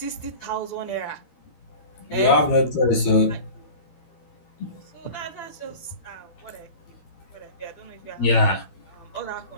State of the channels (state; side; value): late; right; 13 ms